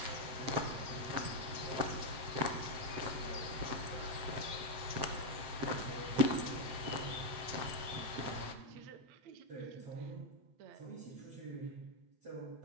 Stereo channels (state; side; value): late; left; 7.7 ms